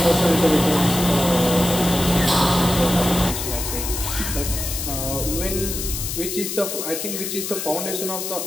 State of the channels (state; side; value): noise; left; hiss, 5 dB below the sound